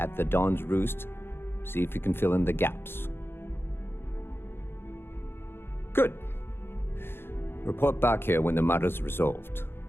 the Dawn's Roost. See if you can fill in the gaps. Good. Report back here when the matter's resolved.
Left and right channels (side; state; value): right; late; 0.11 ms